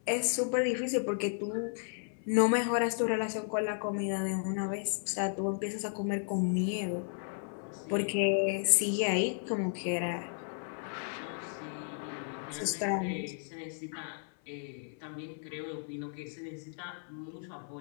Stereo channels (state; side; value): silent; right; 55 dB below the other